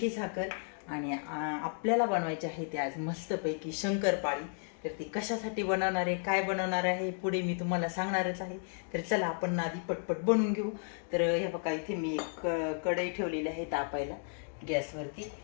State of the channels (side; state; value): right; silent; 55 dB below the other